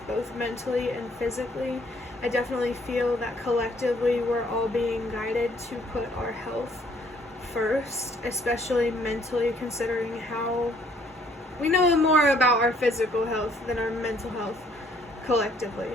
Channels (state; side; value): normal; both; correlation 0.63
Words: both mentally and physically. I definitely feel that collectively we're all being guided to put our health first, especially mentally, considering how we know more about our physical health than our mental health collectively.